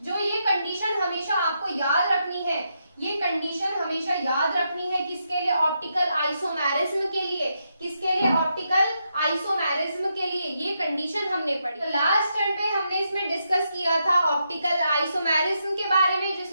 जो ये कंडीशन हमेशा आपको याद रखनी है, ये कंडीशन हमेशा याद रखनी है, किसके लिए, ऑप्टिकल आइसोमेरिज्म के लिए, किसके लिए, ऑप्टिकल आइसोमेरिज्म के लिए ये कंडीशन हमने पढ़ी। तो लास्ट टर्न पे हमने इसमें डिस्कस किया था ऑप्टिकल आइसोमेरिज्म के बारे में,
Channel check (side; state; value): both; inverted; correlation -0.82